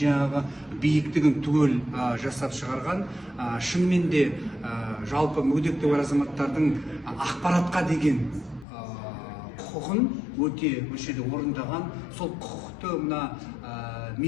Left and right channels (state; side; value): drops out; right; at 8.7 s